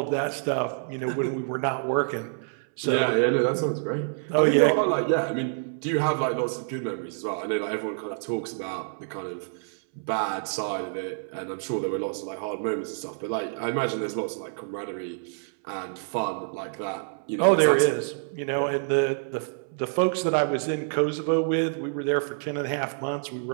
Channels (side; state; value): left; silent; 60 dB below the other